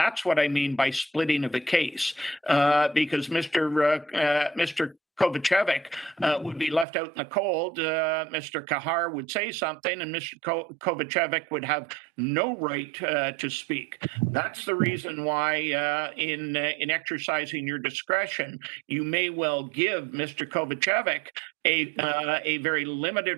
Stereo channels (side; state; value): left; drops out; at 6.9 s